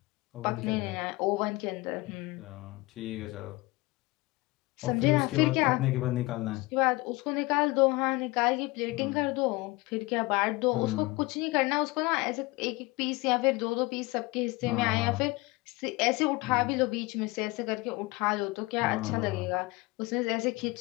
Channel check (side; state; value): right; quieter; 22.5 dB